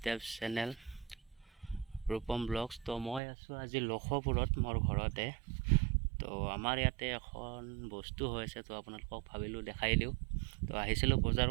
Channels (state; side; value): drops out; left; at 3.2 s